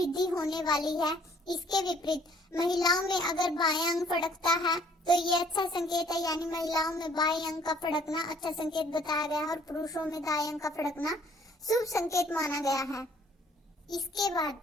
होने वाली है। इसके विपरीत महिलाओं में अगर बायां अंग फड़कता है तो ये अच्छा संकेत है, यानी महिलाओं में बाएं अंग का फड़कना अच्छा संकेत बताया गया है और पुरुषों में दाएं अंग का फड़कना शुभ संकेत माना गया है। इसके बाद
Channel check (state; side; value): normal; both; correlation 0.60